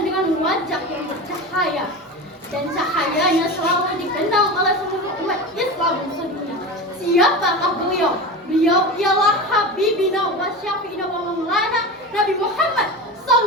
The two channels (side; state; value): both; normal; correlation 0.26